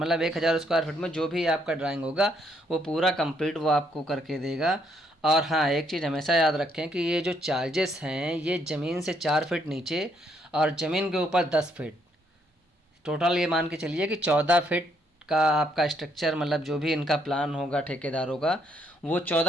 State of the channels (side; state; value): both; normal; correlation 0.72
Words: 1000 स्क्वायर फीट में जो भी आपका ड्राइंग होगा वो पूरा कंप्लीट वो आपको करके देगा। और हाँ, एक चीज़ हमेशा याद रखें कि ये जो चार्जेस हैं ये ज़मीन से 4 फीट नीचे और ज़मीन के ऊपर 10 फीट, टोटल ये मान के चलिए कि 14 फीट का आपका स्ट्रक्चर, मतलब जो भी इनका प्लान होगा ठेकेदारों का वो